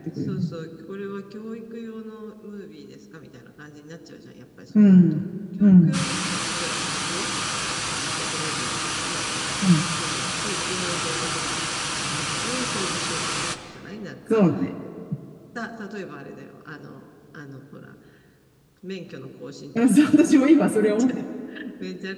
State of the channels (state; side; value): identical; both; correlation 1.00